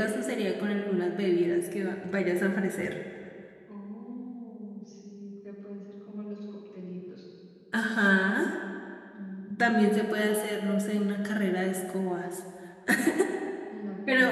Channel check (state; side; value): identical; both; correlation 1.00